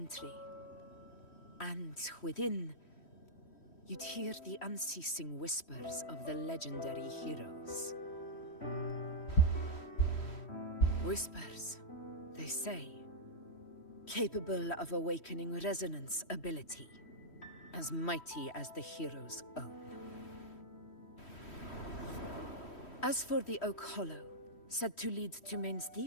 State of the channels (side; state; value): right; late; 3.1 ms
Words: And within, you'd hear the unceasing whispers of the legendary heroes. Whispers, they say, capable of awakening resonance ability, as mighty as the hero's own. As for the Oak Hollow, said to lead to Main's